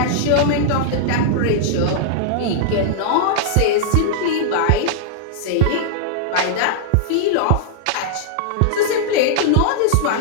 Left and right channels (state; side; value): different; both; correlation -0.01